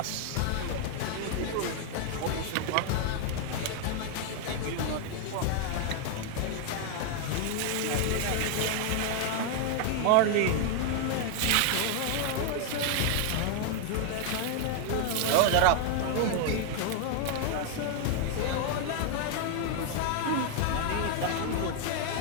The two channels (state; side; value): different; both; correlation 0.00